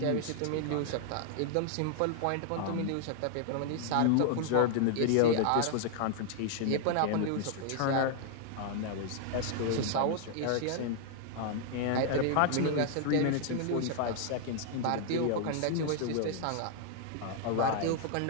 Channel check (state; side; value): different; both; correlation 0.00